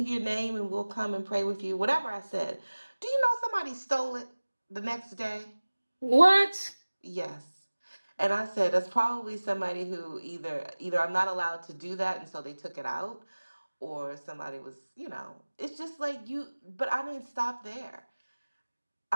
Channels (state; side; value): inverted; both; correlation -1.00